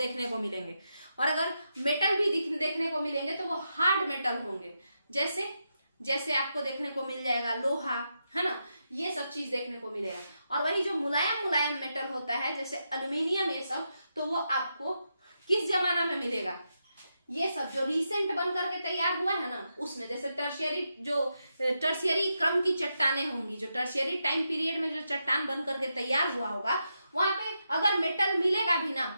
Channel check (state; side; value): inverted; both; correlation -0.85